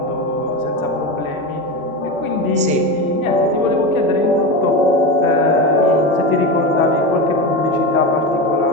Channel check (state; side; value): normal; both; correlation 0.20